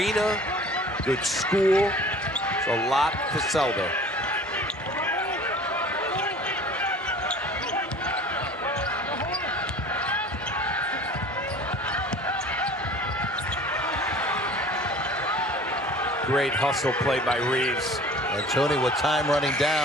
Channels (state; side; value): normal; both; correlation 0.45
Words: good school. There's a lot to sell there. Great hustle play by Reeves. And Tony with time running